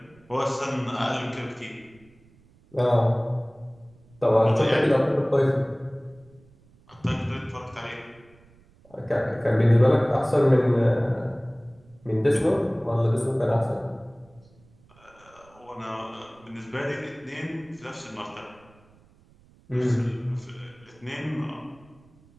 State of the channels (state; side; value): noise; right; rumble, 28 dB below the sound